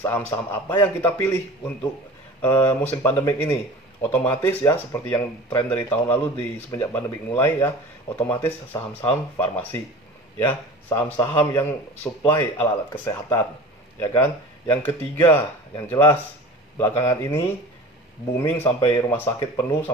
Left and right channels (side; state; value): both; normal; correlation 0.38